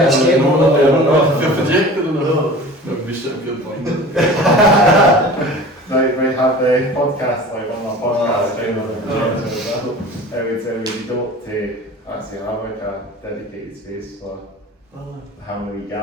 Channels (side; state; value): both; normal; correlation 0.40